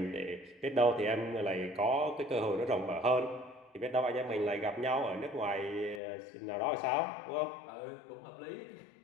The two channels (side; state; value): right; drops out; at 6.0 s